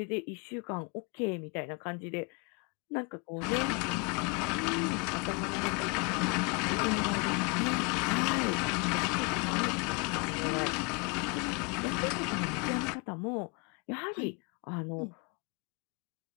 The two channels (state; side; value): quieter; right; 31.6 dB